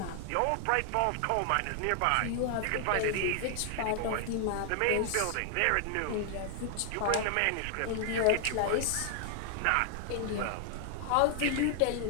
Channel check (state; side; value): different; both; correlation 0.00